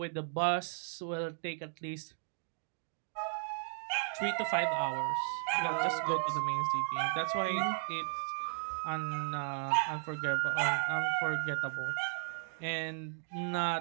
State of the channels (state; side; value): silent; left; digital silence